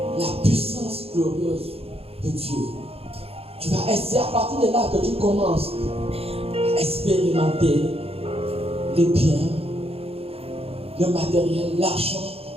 la puissance glorieuse de Dieu. Tu vas essayer à partir de là que tu commences à expérimenter les biens, le matériel, l'argent.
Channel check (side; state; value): left; late; 0.28 ms